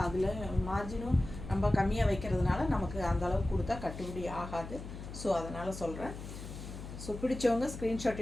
அதில் மார்ஜினும் நம்ம கம்மியாக வைக்கிறதுனால நமக்கு அந்தளவுக்கு கொடுத்தா கட்டுப்படி ஆகாது. ஸோ அதனால் சொல்கிறேன். ஸோ பிடிச்சவங்க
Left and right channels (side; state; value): left; noise; hum, 10 dB below the sound